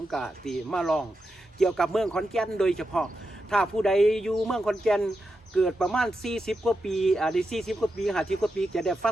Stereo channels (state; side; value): normal; both; correlation 0.87